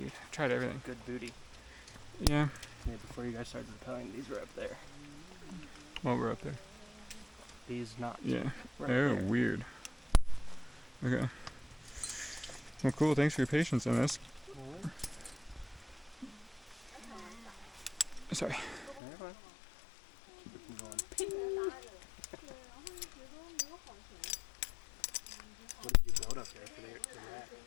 I tried everything. Good booty. Yeah. Yeah, before you guys started rappelling, these were up there. Well, we're up there. These not. Yeah. Right Oh, there. weird. Okay. Well, cool. Thanks for your patience on this. Sorry. Never mind. Keep it from going. What did you build up there for the rack?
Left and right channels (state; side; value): drops out; right; at 19.0 s